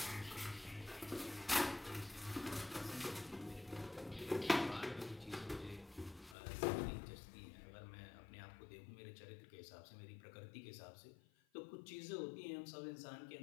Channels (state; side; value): drops out; right; at 6.4 s